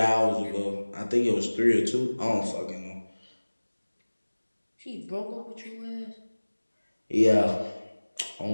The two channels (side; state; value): both; inverted; correlation -1.00